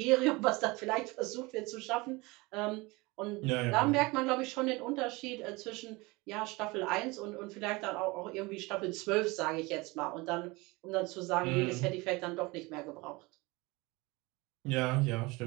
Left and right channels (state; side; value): quieter; left; 24.0 dB